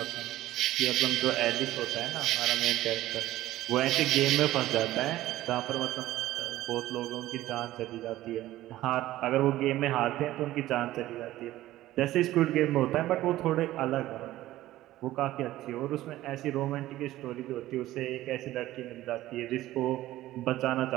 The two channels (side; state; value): left; quieter; 15.4 dB